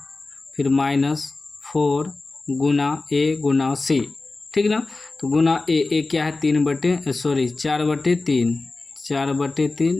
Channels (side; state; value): right; quieter; 3.4 dB